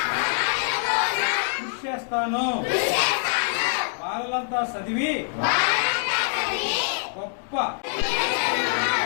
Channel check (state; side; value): silent; right; 62 dB below the other